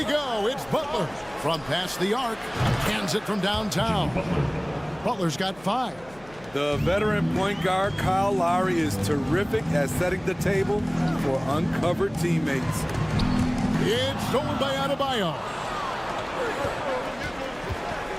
go. It's Butler from past the arc. Cans it from downtown. Butler's got 5. The veteran point guard Kyle Lowry is terrific at setting the table for uncovered teammates. It's stolen by Adebayo.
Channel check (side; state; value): left; noise; hum, 24 dB below the sound